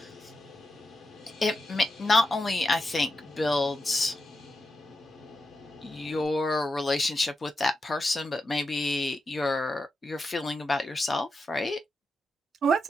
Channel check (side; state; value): both; normal; correlation 0.88